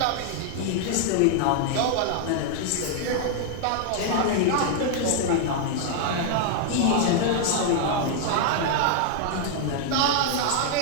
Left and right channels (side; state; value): both; different; correlation 0.00